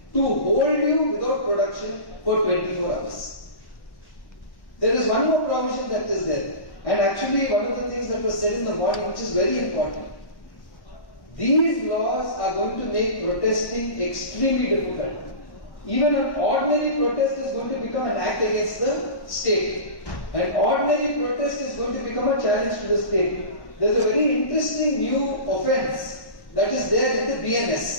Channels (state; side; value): late; right; 1.1 ms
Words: to hold you without production for 24 hours. There is one more provision that is there, and actually one of the things that was said in the morning, which is very important. These laws are going to make protesting extremely difficult. Even an ordinary protest is going to become an act against the state. An ordinary protest is going to become a challenge to the state. There is a very interesting new offence that is there in the